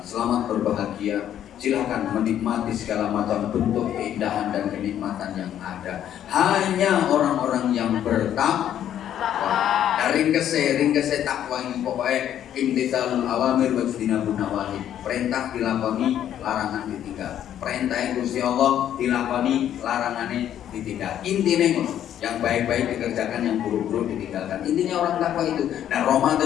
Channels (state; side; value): quieter; right; 10.6 dB